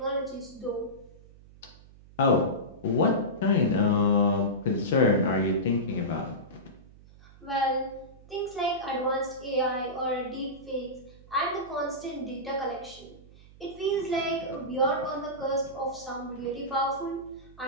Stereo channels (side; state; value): right; noise; hum, 22 dB below the sound